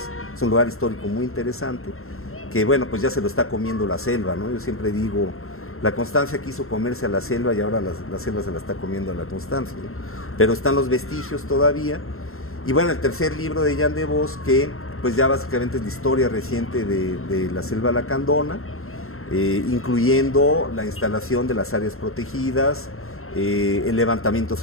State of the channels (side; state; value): right; late; 0.62 ms